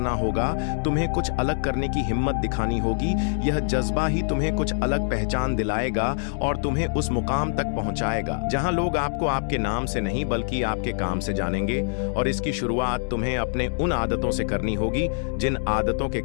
होगा। तुम्हें कुछ अलग करने की हिम्मत दिखानी होगी। यह जज्बा ही तुम्हें कुछ अलग पहचान दिलाएगा और तुम्हें उस मुकाम तक पहुंचाएगा जहां लोग आपको आपके नाम से नहीं बल्कि आपके काम से जानेंगे। और इसकी शुरुआत तुम्हें अपने उन आदतों से करनी होगी जिन आदतों के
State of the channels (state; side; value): silent; right; digital silence